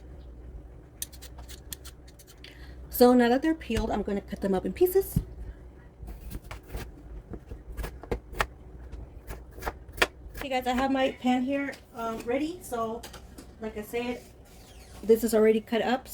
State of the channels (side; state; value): both; identical; correlation 1.00